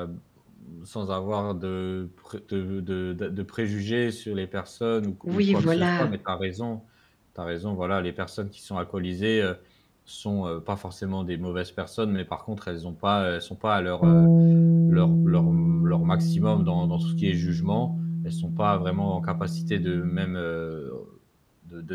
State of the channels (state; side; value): identical; both; correlation 1.00